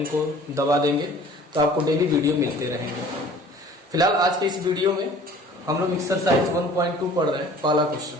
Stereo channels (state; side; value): normal; both; correlation 0.49